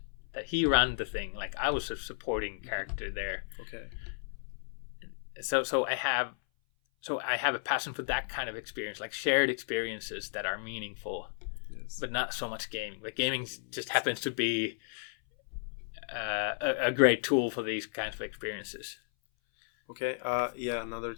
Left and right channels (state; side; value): silent; right; 55 dB below the other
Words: that he ran the thing. Like I was a supporting character there. Okay. So I have a passion for that kind of experience, like shared experiences that are meaningful. Yes. But not so much gaming. But gaming just happens to be a great tool for these kinds of experiences. Okay. Yeah. Another